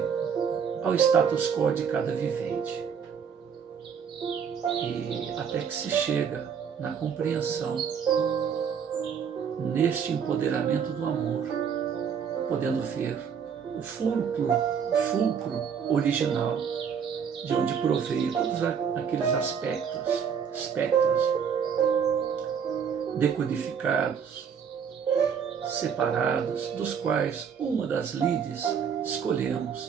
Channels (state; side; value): quieter; left; 7.1 dB